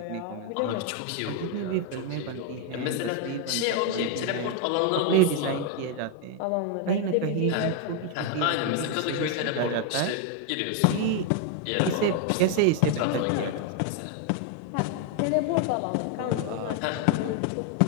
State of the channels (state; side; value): different; both; correlation 0.01